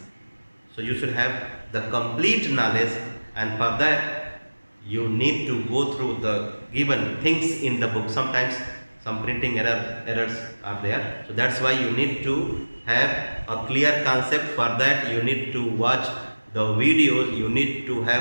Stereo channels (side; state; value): both; inverted; correlation -1.00